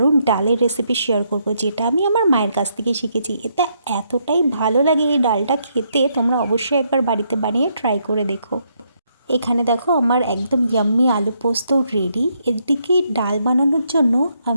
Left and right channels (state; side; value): inverted; both; correlation -0.75